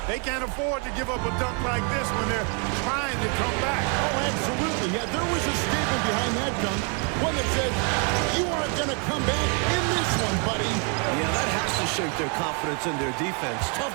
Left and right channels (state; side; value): quieter; left; 37.5 dB